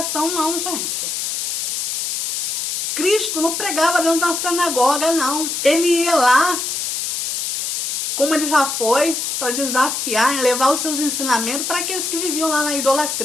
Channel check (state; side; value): noise; left; hiss, 2 dB below the sound